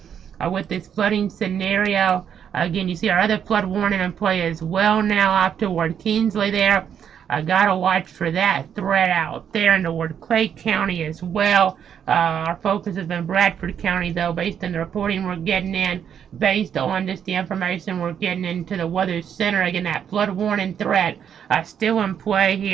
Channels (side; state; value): left; quieter; 8.4 dB